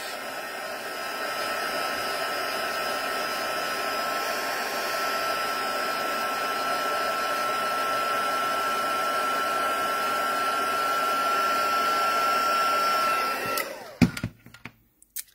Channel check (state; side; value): identical; both; correlation 1.00